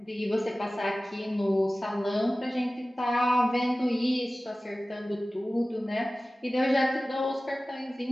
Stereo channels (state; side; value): normal; both; correlation 0.97